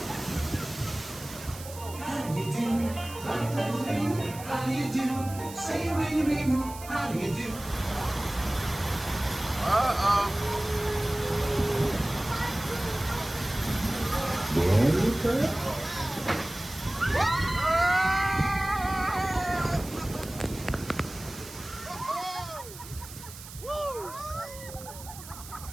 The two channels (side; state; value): right; noise; hiss, 15 dB below the sound